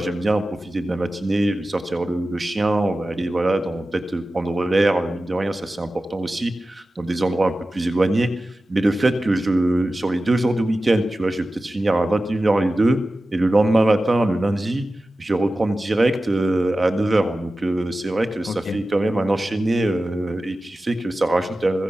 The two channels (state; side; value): normal; both; correlation 0.94